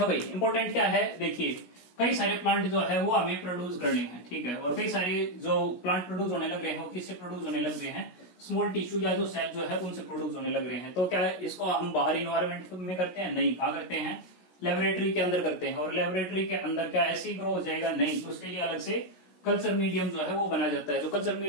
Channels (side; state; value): right; late; 16 ms